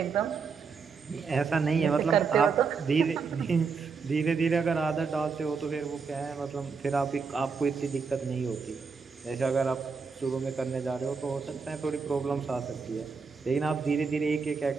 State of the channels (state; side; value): quieter; left; 5.2 dB